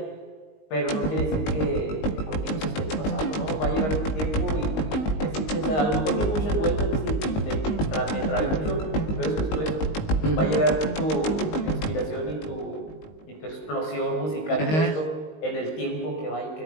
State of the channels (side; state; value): right; late; 19 ms